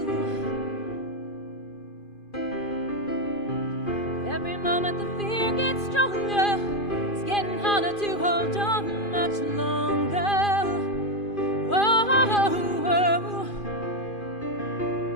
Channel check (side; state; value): right; late; 2.5 ms